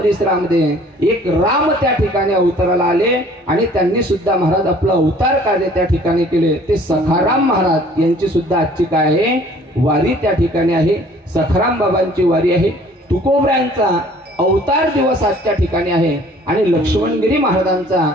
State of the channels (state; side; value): normal; both; correlation 0.54